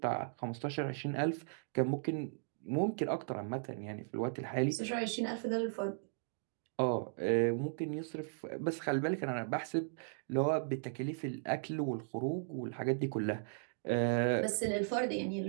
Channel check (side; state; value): left; silent; digital silence